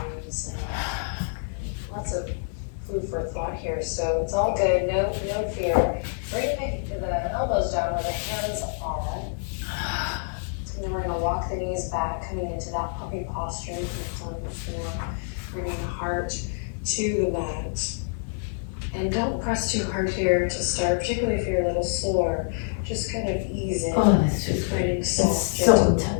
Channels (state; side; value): silent; right; digital silence